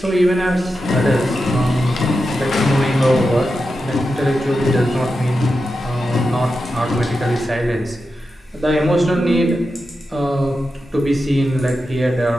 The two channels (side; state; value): both; normal; correlation 0.90